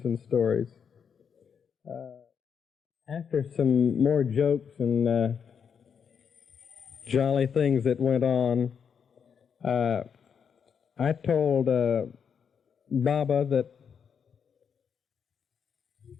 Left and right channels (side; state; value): right; quieter; 7.0 dB